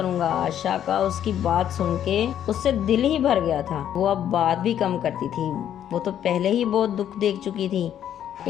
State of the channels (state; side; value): quieter; right; 10.3 dB